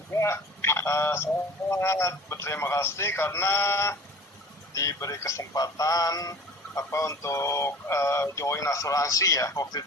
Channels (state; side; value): normal; both; correlation 0.44